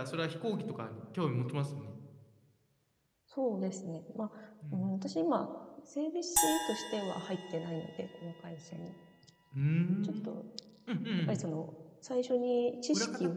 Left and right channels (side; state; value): both; identical; correlation 1.00